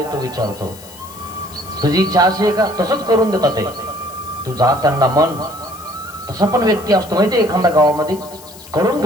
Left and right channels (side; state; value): left; noise; hiss, 19 dB below the sound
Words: तो विचारतो. तुझी इच्छा अशी आहे का, तसंच करून देतात ते. तू जा त्यांना मन. तसा पण व्यक्ती असतो माहिती, एखाद्या गावामध्ये करून